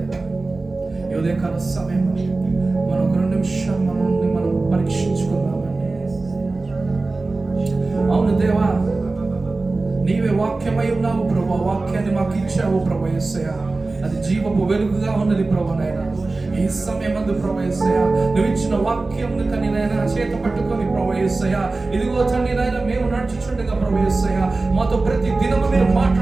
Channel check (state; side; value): quieter; left; 3.4 dB